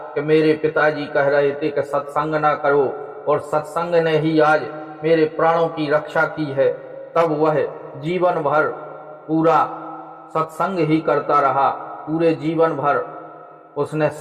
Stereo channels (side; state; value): both; identical; correlation 1.00